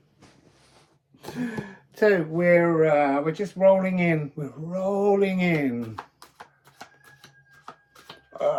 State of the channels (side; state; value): both; identical; correlation 1.00